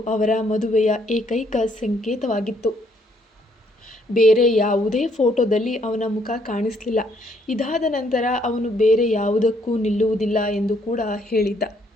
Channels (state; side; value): normal; both; correlation 0.69